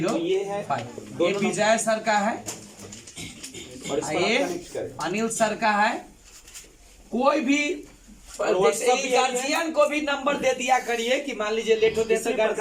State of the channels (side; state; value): both; identical; correlation 1.00